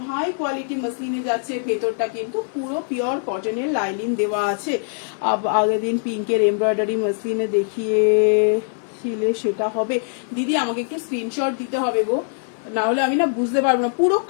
হাই কোয়ালিটি মাসলিনে যাচ্ছে, ভেতরটা কিন্তু পুরো পিওর কটনের লাইনিং দেওয়া আছে। আগের দিন পিঙ্কের এমব্রয়ডারি মাসলিনে দেখিয়েছিলে, সেটা হবে দিদি, আমাকে একটু স্ক্রিনশট দিতে হবে গো, না হলে আমি না বুঝতে পারবো না। পুরো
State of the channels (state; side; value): silent; right; digital silence